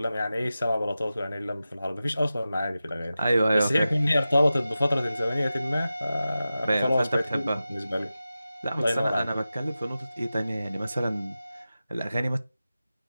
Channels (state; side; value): inverted; both; correlation -0.94